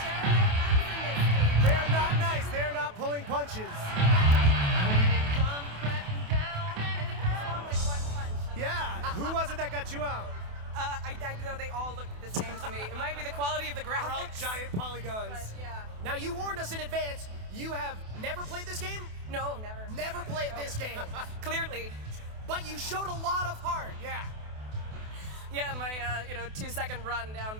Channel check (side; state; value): left; late; 28 ms